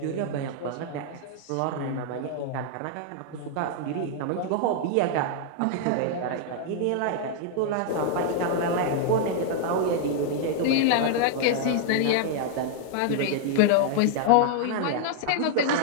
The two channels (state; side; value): different; both; correlation -0.01